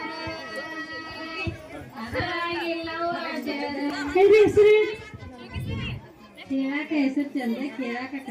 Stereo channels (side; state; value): both; identical; correlation 1.00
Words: ಕೇಳಾಕ ಹೆಸರು ಚಂದ, ಕೇಳಾಕ